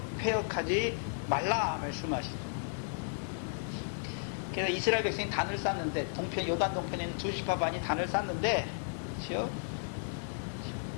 패역하지 말라 말씀하십니다. 그래서 이스라엘 백성이 단을 쌓는데 요단 동편에 있는 두 집과 반이 단을 쌓는데 그렇죠?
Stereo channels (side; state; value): right; silent; digital silence